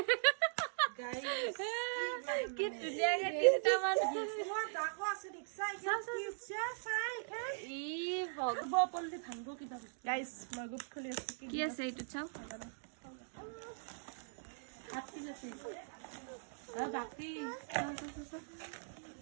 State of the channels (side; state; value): left; silent; digital silence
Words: গাইস কি ধুনীয়াকে তিনটা মান তোমাৰ ডাকো আছে ৰিক্সা ই ভগ পল্লি ভাঙব কিবা গাইস মই গ্ৰুপ খুলি আছো কি আছে এইটো চাও হাত কি আছে বাকি